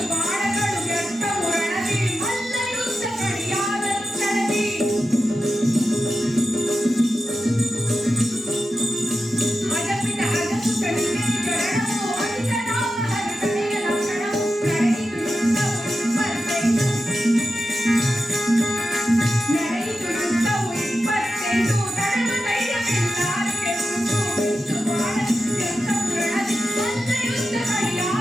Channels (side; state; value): both; normal; correlation 0.91